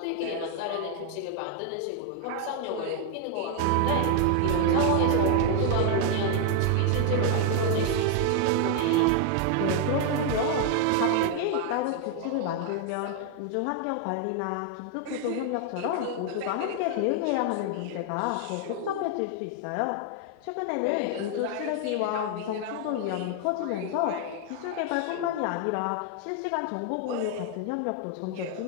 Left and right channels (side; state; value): both; different; correlation 0.00